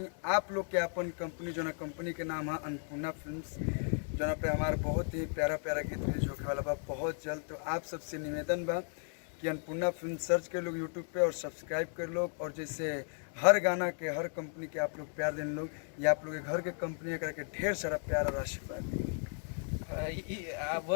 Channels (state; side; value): silent; right; 54 dB below the other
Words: आप लोग के अपन कंपनी जो ना कंपनी के नाम है अन्नपूर्णा फिल्म्स, जो पे हमारा बहुत ही प्यारा प्यारा गीत रिलीज होने वाला बा बहुत जल्द। तो आप सबसे निवेदन बा कि अन्नपूर्णा फिल्म सर्च कर लोग यूट्यूब पे और सब्सक्राइब कर लोग, और जैसे हर गाना के हर कंपनी के आप लोग प्यार देने लोग, या आप लोग के घर के कंपनी करके ढेर सारा प्यार और आशीर्वाद दें।